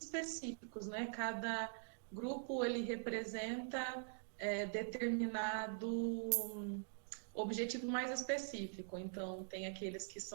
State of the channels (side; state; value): left; silent; digital silence